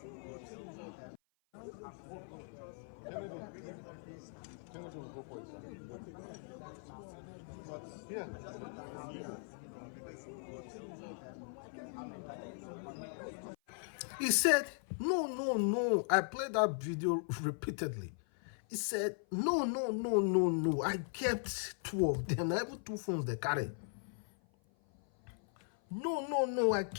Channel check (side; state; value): right; silent; 52 dB below the other